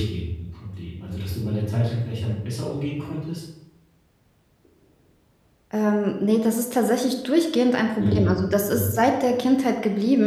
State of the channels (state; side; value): identical; both; correlation 1.00